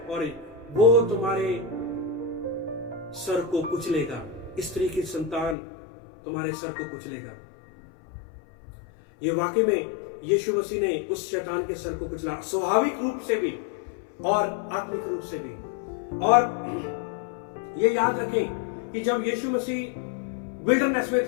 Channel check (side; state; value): right; drops out; at 5.6 s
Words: और वो तुम्हारे सर को कुचलेगा। स्त्री की संतान तुम्हारे सर को कुचलेगा। ये वाकई में यीशु मसीह ने उस शैतान के सर को कुचला, स्वाभाविक रूप से भी और आत्मिक रूप से भी। और ये याद रखें कि जब यीशु मसीह विल्डरनेस में